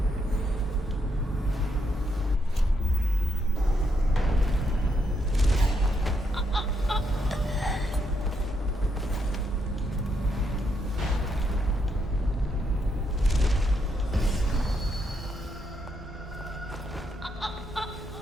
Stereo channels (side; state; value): both; normal; correlation 0.78